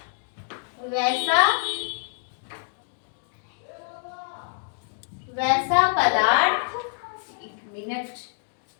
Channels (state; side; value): silent; right; digital silence